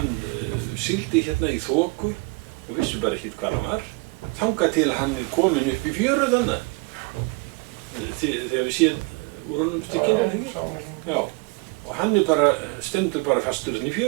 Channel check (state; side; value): quieter; left; 27.8 dB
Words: sigldi hérna í þoku og vissi bara ekkert hvað hann var. Þangað til hann er komin upp í fjöru þannig. Þegar við séum úr honum stykkinu. Já. Og hann stendur bara fastur hérna í